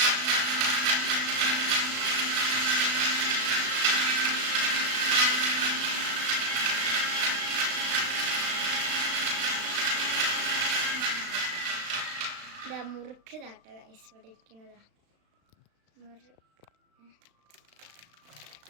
മുറുക്ക് താട്ടോ ഗൈസ്, ഇവിടെ ഇരിക്കുന്നതാ മുറുക്ക്.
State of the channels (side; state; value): left; late; 36 ms